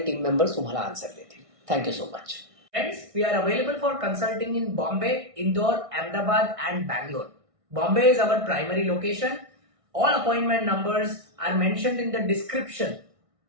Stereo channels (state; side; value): late; left; 1.6 ms